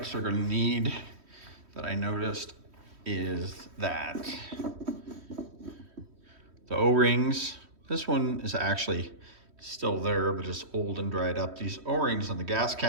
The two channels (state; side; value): late; left; 3.1 ms